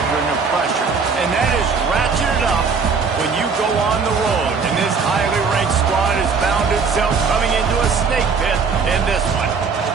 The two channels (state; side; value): quieter; left; 5.2 dB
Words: of pressure, and that is ratcheted up when you go on the road. And this highly ranked squad has found itself coming into a snake pit in this one.